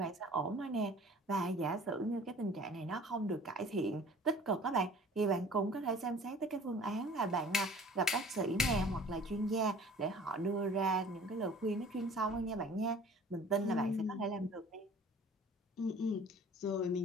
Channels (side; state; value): both; normal; correlation 0.47